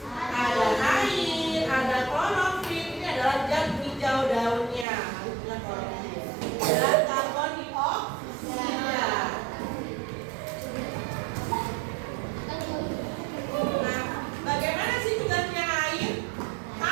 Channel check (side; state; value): left; drops out; at 4.9 s